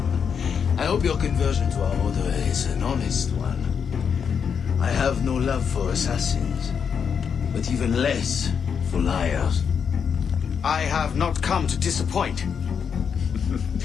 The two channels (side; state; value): right; quieter; 6.9 dB